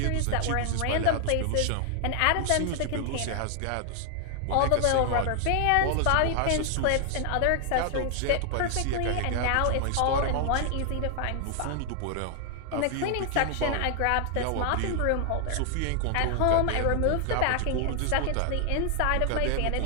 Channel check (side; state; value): both; different; correlation 0.00